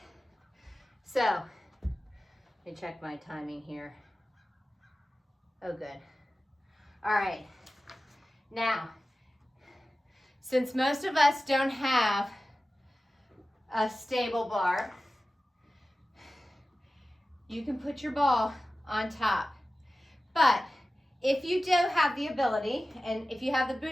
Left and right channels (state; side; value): normal; both; correlation 0.95